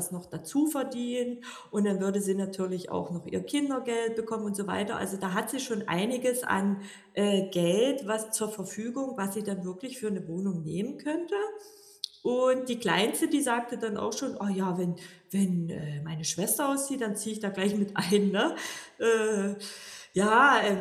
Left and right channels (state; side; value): identical; both; correlation 1.00